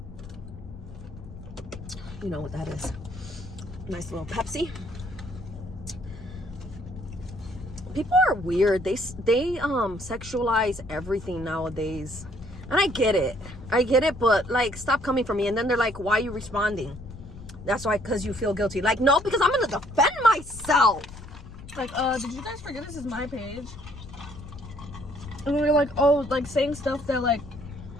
You know what that is. Nice little Pepsi. People are weird. They sexualize everything nowadays. And I get it, but like, stop coming for me. And then they're like, why are you responding? That's why, because you feel guilty. Like, no, because I'm gonna defend myself. Like, did you guys forget this is my page? And we were like, oh, like saying stuff that like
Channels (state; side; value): noise; left; rumble, 14 dB below the sound